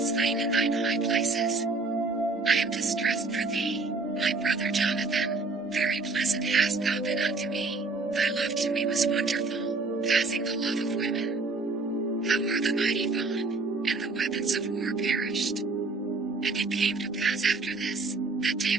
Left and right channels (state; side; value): quieter; left; 3.6 dB